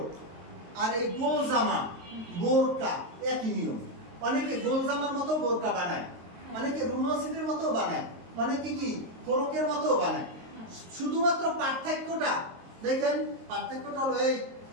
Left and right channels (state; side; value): late; left; 22 ms